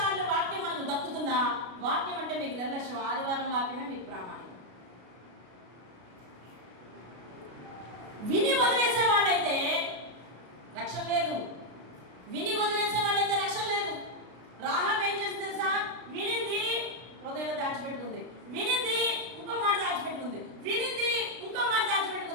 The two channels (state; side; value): late; left; 33 ms